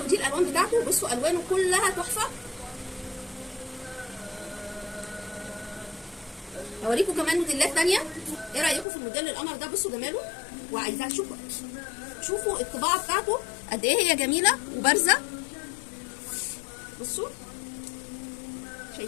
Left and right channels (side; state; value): right; drops out; at 8.8 s